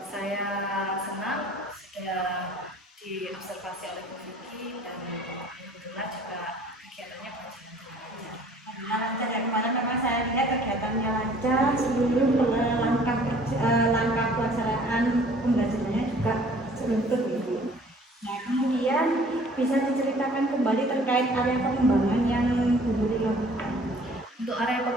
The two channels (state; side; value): normal; both; correlation 0.53